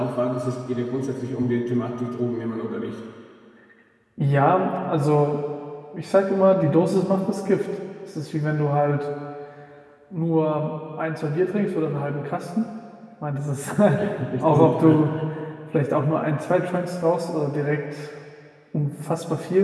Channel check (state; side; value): identical; both; correlation 1.00